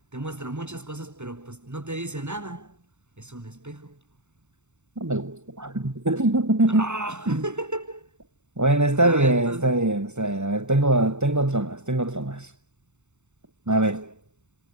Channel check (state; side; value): late; left; 0.84 ms